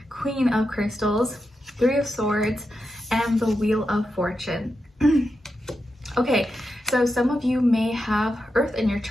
Queen of Crystals, Three of Swords, and the Wheel of Fortune. Okay, so some of you may have Earth in your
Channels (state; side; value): normal; both; correlation 0.88